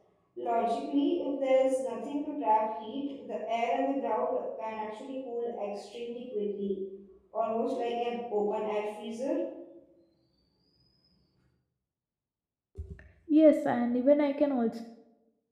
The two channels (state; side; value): identical; both; correlation 1.00